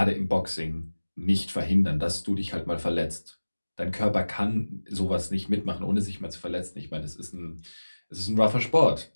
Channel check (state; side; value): inverted; both; correlation -1.00